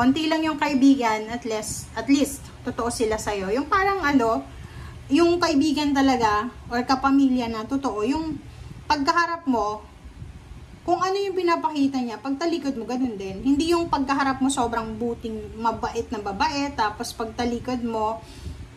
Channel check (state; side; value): identical; both; correlation 1.00